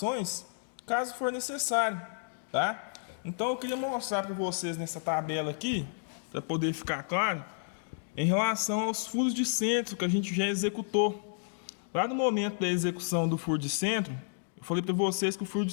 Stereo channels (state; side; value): silent; right; digital silence